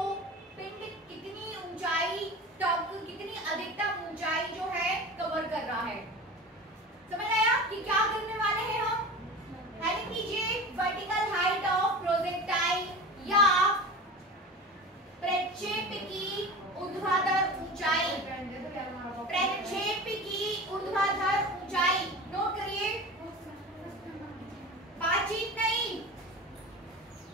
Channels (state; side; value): normal; both; correlation 0.32